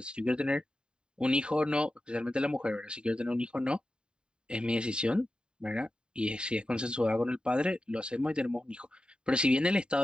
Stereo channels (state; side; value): late; left; 0.049 ms